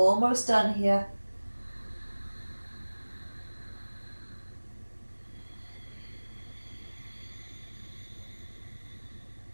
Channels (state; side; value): inverted; both; correlation -1.00